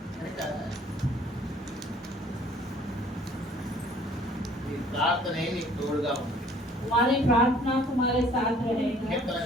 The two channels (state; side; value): normal; both; correlation 0.56